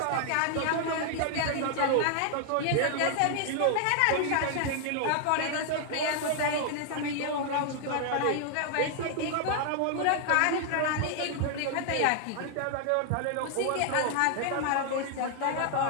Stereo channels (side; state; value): both; different; correlation 0.00